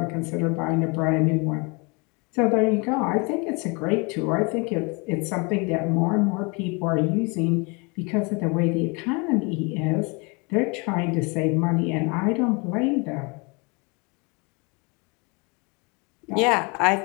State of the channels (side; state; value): right; quieter; 30.2 dB